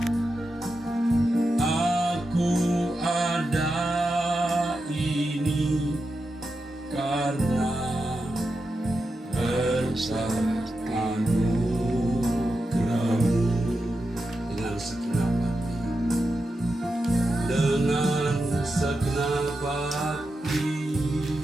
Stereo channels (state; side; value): normal; both; correlation 0.89